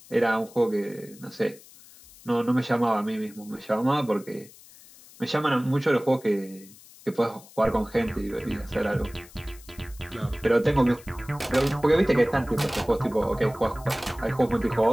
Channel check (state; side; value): noise; left; hiss, 22 dB below the sound